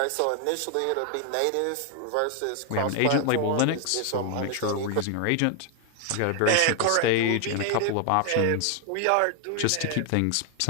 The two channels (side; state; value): both; different; correlation 0.00